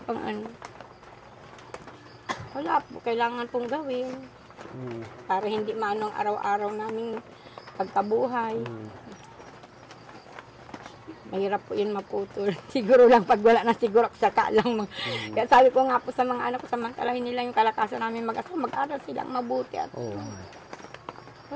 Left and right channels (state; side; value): identical; both; correlation 1.00